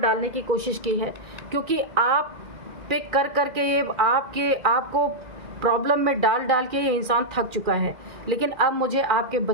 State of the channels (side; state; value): left; late; 2.0 ms